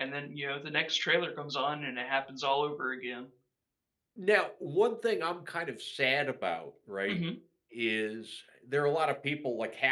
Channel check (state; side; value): identical; both; correlation 1.00